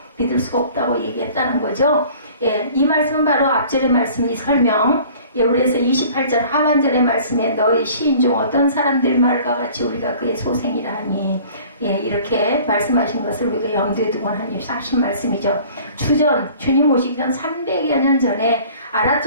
믿을 수가 없다고 얘기했다는 거죠. 예, 이 말씀은 바로 앞절의 말씀이 설명. 예, 그래서 28절 하반절의 말씀에 너희 시인 중 어떤 사람들 말과 같이 우리가 그의 소생이라 하니 예, 이렇게 말씀하신 것을 우리가 염두에 두고 하신 말씀이죠. 주님 오시기 전 300여 년 전에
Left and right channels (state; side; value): inverted; both; correlation -0.49